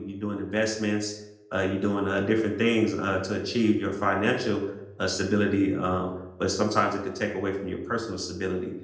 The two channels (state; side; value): identical; both; correlation 1.00